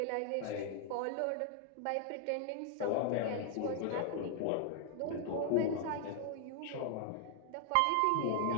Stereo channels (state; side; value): different; both; correlation 0.00